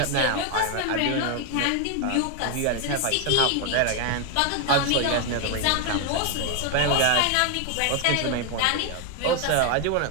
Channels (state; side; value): different; both; correlation 0.01